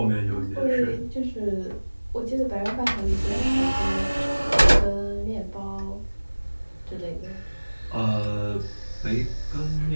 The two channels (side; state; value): both; inverted; correlation -1.00